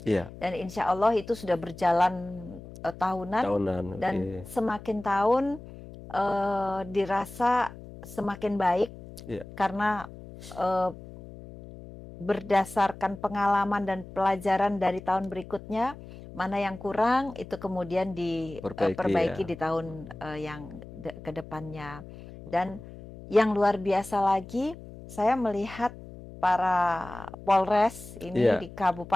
iya, Dan insya Allah itu sudah berjalan tahunan, tahunan. dan Oke. semakin tahun dirasa semakin baik Iya, karena berdasarkan pengalaman dan pelajaran dari tahun berikutnya, mana yang kurang itu kemudian perbaiki diperbaiki ya. di tahun yang ke depannya. Dan yang luar biasa lagi, saya melihat para Polres ini Iya, di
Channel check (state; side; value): noise; left; hum, 15 dB below the sound